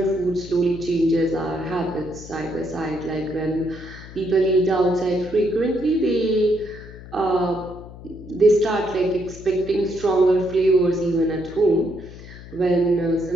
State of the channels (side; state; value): left; noise; hum, 16 dB below the sound